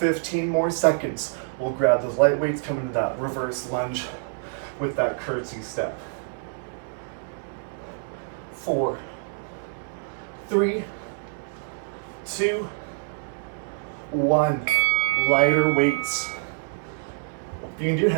more seconds. We'll grab those light weights, come into that reverse lunge with that curtsy step. 4, 3, 2, 1. Lighter weights. You can do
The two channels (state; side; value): silent; left; digital silence